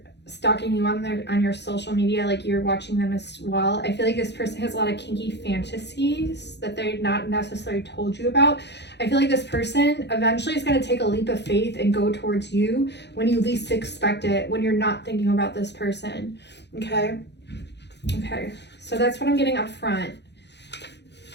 stalking you on your social media, like you're watching them as well. I feel like this person has a lot of kinky fantasies that they're not necessarily told you about. I feel like this person eventually is going to take a leap of faith and go towards you when you least expect it, when you're not thinking about this person. Okay, so that's what I'm getting up front.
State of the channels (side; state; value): right; late; 0.50 ms